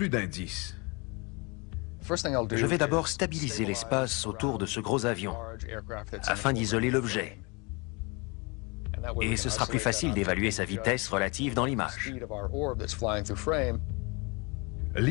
d'indices. Je vais d'abord stabiliser l'espace autour de ce gros avion, afin d'isoler l'objet. Et ce sera plus facile d'évaluer sa vitesse relative dans l'image.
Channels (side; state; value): right; quieter; 29.1 dB